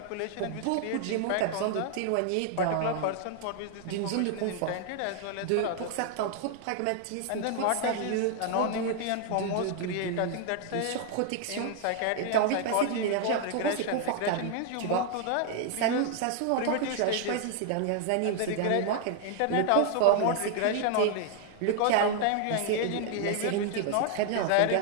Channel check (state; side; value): different; both; correlation 0.00